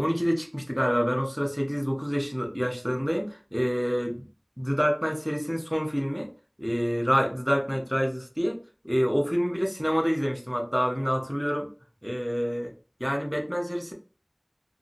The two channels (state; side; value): identical; both; correlation 1.00